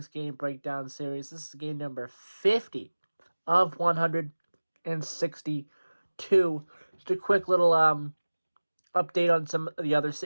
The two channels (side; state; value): both; inverted; correlation -1.00